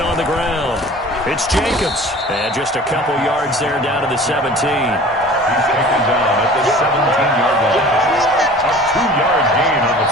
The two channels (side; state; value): both; normal; correlation 0.44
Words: on the ground. It's Jacobs. And just a couple yards there down to the 17. He's taken down at the 17-yard line. A 2-yard gain on the